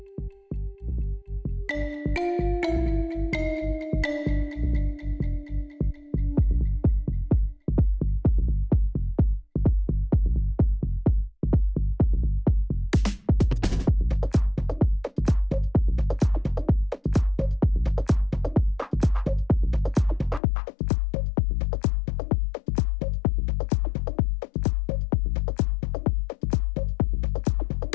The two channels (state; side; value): drops out; right; at 20.4 s